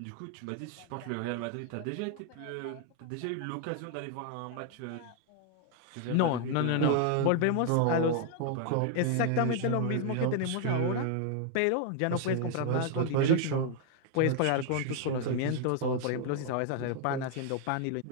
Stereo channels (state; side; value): different; both; correlation 0.00